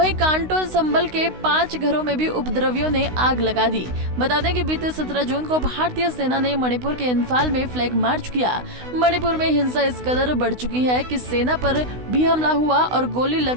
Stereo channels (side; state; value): left; late; 16 ms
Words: कांटो संबल के 5 घरों में भी उपद्रवियों ने आग लगा दी। बता दें कि बीते 17 जून को भारतीय सेना ने मणिपुर के इंफाल में फ्लैग मार्च किया। मणिपुर में हिंसा इस कदर बढ़ चुकी है कि सेना पर भी हमला हुआ और गोली